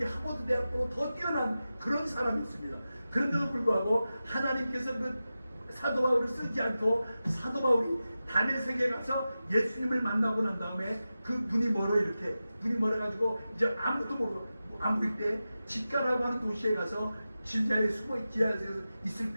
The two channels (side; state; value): both; inverted; correlation -0.93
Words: 하버드 대학보다 더 뛰어난 그런 사람이었습니다. 그런데도 불구하고 하나님께서 그 사도 바울을 쓰지 않고 사도 바울이 다메섹에 가서 예수님을 만나고 난 다음에 그 눈이 멀어가지고 이제 아무도 모르고 아무리 때 집가라고 하는 도시에 가서 지하에 있을